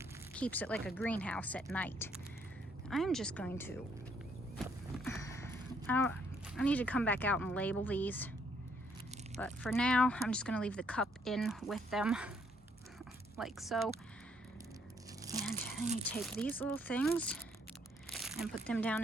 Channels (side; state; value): both; normal; correlation 0.69